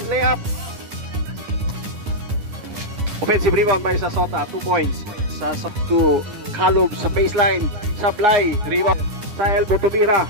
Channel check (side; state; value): left; late; 10 ms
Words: layup. Offensive rebound by sa Sota, 2 points. Sa to Kalob sa baseline. Sablay, rebound sa elbow tumira.